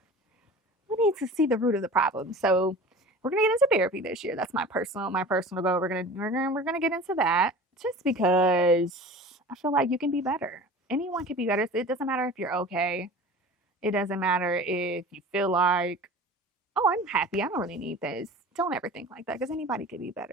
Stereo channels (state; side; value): normal; both; correlation 0.39